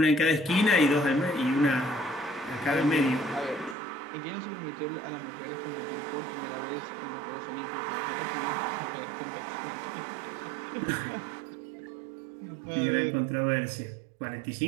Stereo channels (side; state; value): left; drops out; at 3.8 s